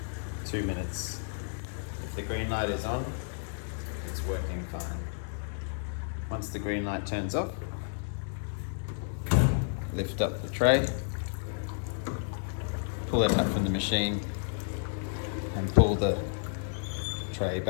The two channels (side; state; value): right; silent; digital silence